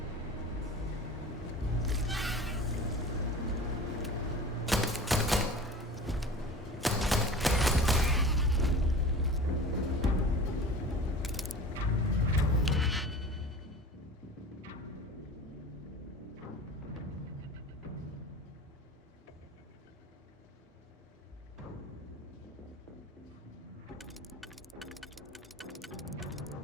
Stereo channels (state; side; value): normal; both; correlation 0.38